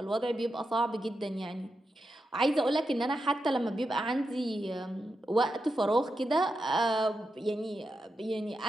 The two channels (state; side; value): normal; both; correlation 0.87